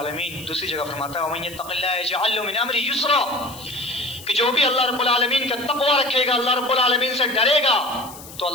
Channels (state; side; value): noise; left; hiss, 17 dB below the sound